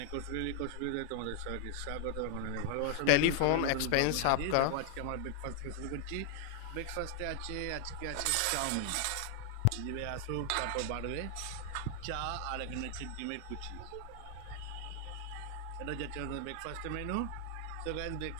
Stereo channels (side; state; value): both; different; correlation 0.00